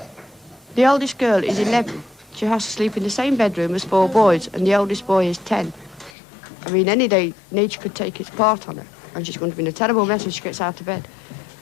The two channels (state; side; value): drops out; right; at 6.1 s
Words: The oldest girl is 11. She has to sleep in the same bedroom as 4 boys, and the oldest boy is 10. I mean, any day, nature could take its part on her, and she's going to be in a terrible mess when she gets out of bed,